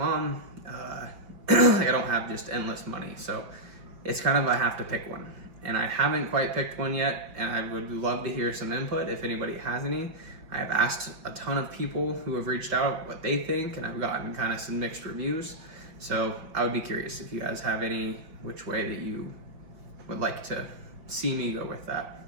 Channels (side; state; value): left; late; 5.3 ms